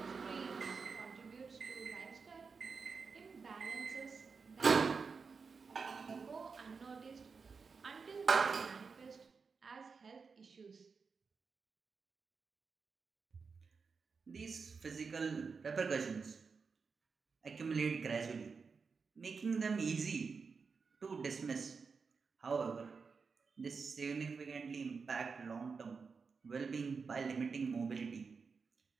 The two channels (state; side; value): quieter; left; 5.1 dB